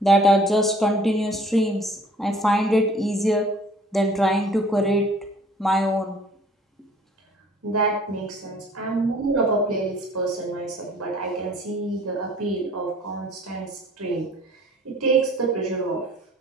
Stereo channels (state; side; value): normal; both; correlation 0.53